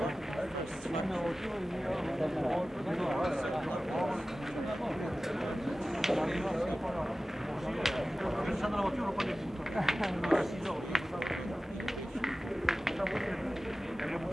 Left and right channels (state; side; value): normal; both; correlation 0.96